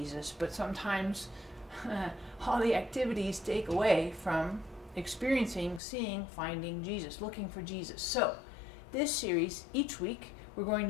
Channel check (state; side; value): drops out; right; at 5.8 s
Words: but sometimes all the activities take away from experiencing, seeing, finding Jesus, looking for Jesus. So this series, each week, we're going